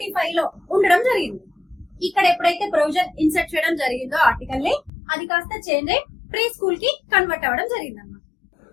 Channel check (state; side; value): drops out; right; at 4.9 s